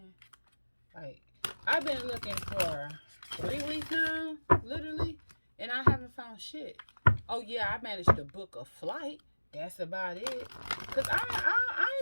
Like, I've been looking for 3 weeks now, literally, and I haven't found shit. Oh yeah, I managed to book a flight. That's about it. Cause I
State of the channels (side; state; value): both; inverted; correlation -1.00